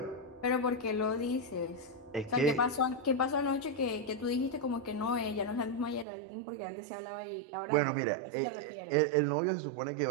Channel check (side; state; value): left; drops out; at 6.1 s